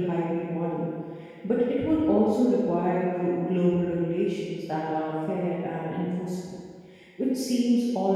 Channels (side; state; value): both; identical; correlation 1.00